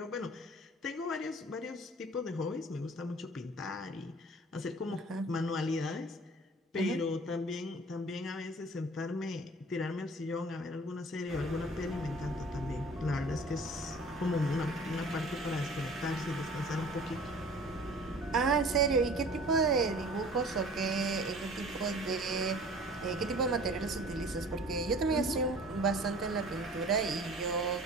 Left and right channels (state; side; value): normal; both; correlation 0.46